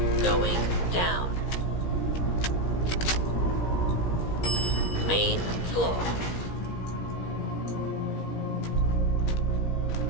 Going down. Main floor.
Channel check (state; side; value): late; right; 17 ms